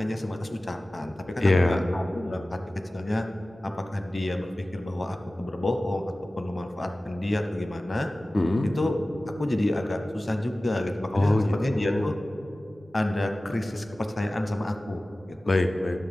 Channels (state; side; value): normal; both; correlation 0.97